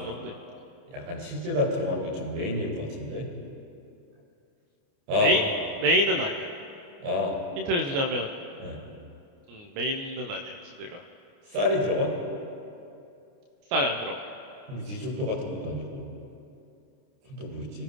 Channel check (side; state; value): left; late; 29 ms